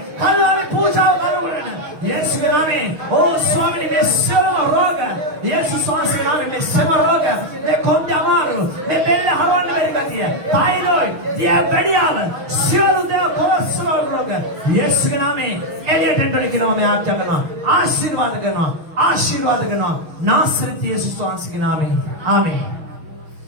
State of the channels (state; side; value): late; left; 6.3 ms